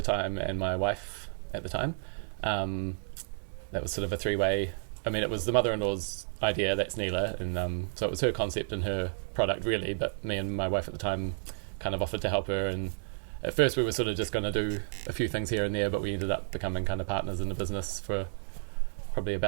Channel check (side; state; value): left; silent; digital silence